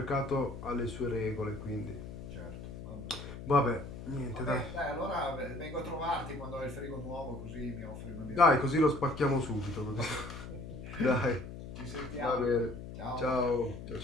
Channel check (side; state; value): left; noise; hum, 10 dB below the sound